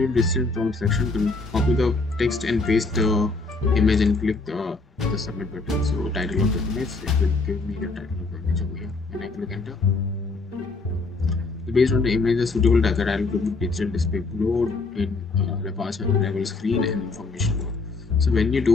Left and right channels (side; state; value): right; quieter; 3.7 dB